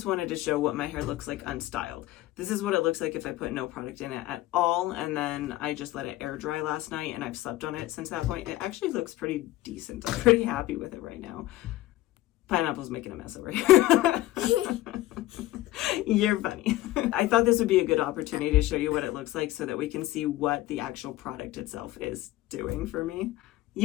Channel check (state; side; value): quieter; right; 16.3 dB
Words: wanted to show what my hair looks like unstyled. This is what it looks like if I put no product in it at all, and then I just let it air dry last night, and I've slept on it since that point. It actually looks pretty decent. I'm pretty happy with it right now. Pineapple's making a mess over here. You're funny. I thought this would be a good opportunity to show you what it looks like so that we can see what the actual product itself is doing for me.